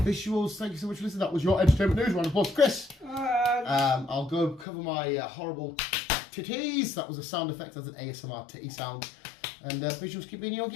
thank you so much for listening. That was your entertainment news. Round of applause, Chris. I'll go cover my horrible titties. That was a sound effect as an ASMR titty sound. And visuals, keep being you,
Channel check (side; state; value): right; drops out; at 4.7 s